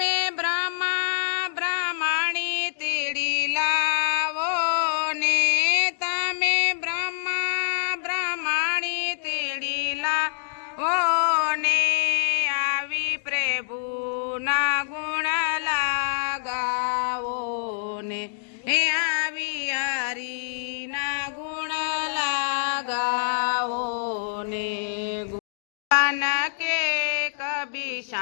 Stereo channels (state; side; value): silent; right; digital silence